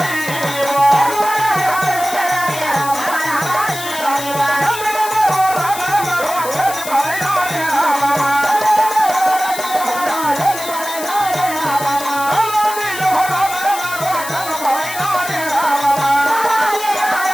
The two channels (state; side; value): noise; left; hiss, 9 dB below the sound